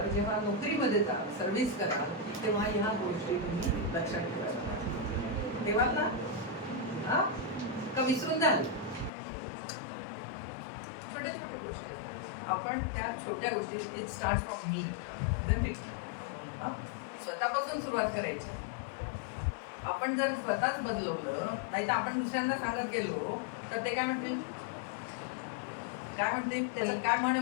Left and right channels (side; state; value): right; drops out; at 9.1 s